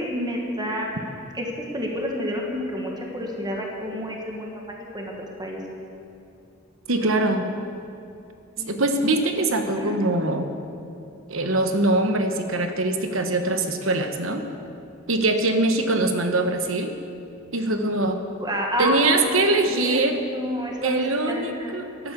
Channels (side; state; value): both; normal; correlation 0.13